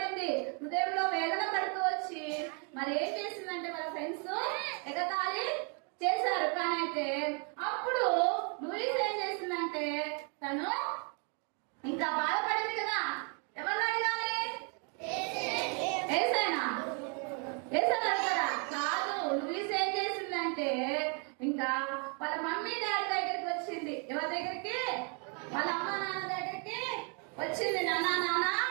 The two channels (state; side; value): quieter; left; 38.0 dB